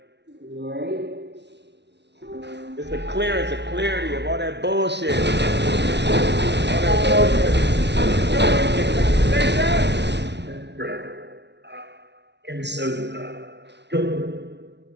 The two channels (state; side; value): late; left; 0.50 ms